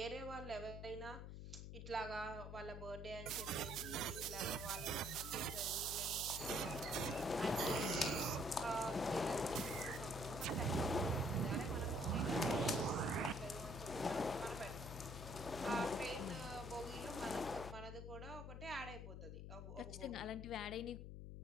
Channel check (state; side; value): noise; left; hum, 8 dB below the sound